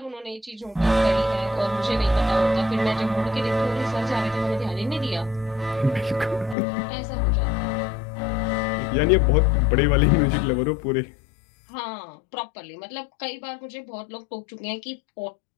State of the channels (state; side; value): drops out; right; at 6.6 s